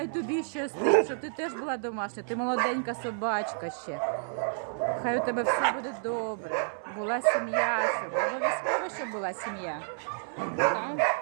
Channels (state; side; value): silent; left; 58 dB below the other